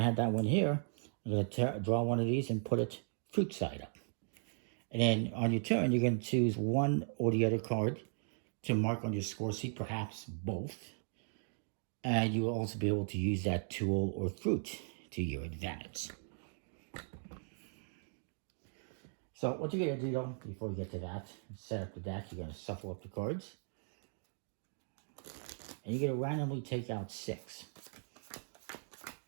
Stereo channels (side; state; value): left; silent; digital silence